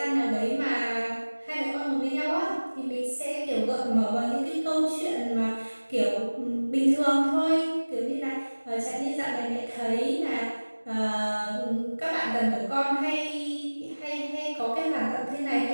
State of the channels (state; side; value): inverted; both; correlation -1.00